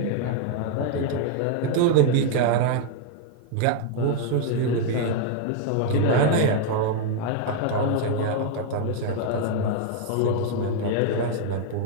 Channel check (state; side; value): different; both; correlation 0.00